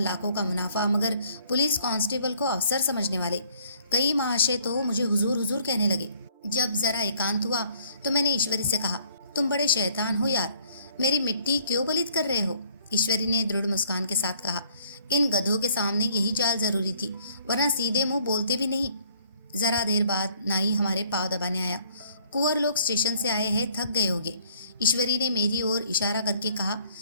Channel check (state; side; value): inverted; both; correlation -0.62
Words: का मुनाफा, मगर पुलिस कांस्टेबल को अफसर समझने वाले कई महाशय तो मुझे हुजूर हुजूर कहने लगे। जब जरा एकांत हुआ तो मैंने ईश्वरी से कहा, तुम बड़े शैतान हो यार, मेरी मिट्टी क्यों पलीत कर रहे हो? ईश्वरी ने दृढ़ मुस्कान के साथ कहा, इन गधों के सामने यही चाल जरूरी थी, वरना सीधे मुंह बोलते भी नहीं। जरा देर बाद नाई हमारे पाँव दबाने आया। कुंवर लोग स्टेशन से आए हैं, थक गए होंगे। ईश्वरी ने मेरी ओर इशारा करके कहा,